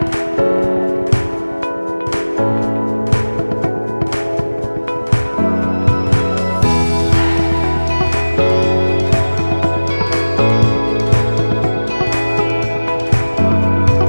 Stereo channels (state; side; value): inverted; both; correlation -1.00